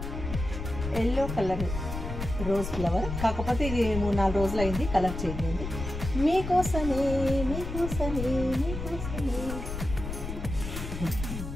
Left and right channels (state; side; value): noise; left; rumble, 6 dB below the sound